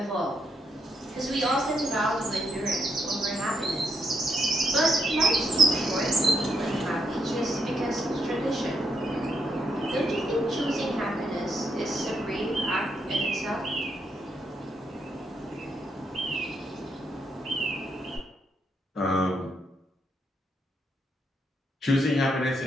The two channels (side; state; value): both; normal; correlation 0.78